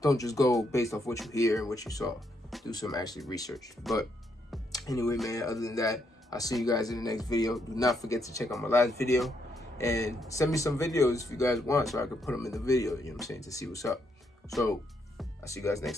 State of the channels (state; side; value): normal; both; correlation 0.76